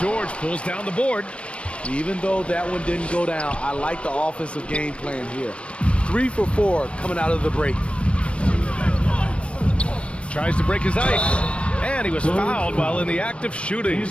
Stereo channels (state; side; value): late; right; 0.060 ms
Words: pulls down the board. Even though that one didn't go down, I like the offensive game plan here. 3 for 4 coming out of the break. Tries to break his ice. And he was fouled while in the act of shooting,